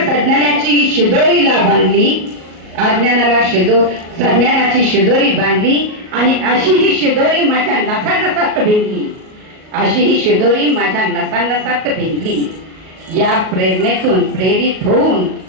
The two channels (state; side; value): late; left; 38 ms